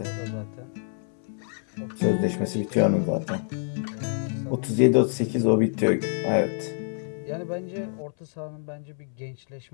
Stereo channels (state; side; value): silent; right; 60 dB below the other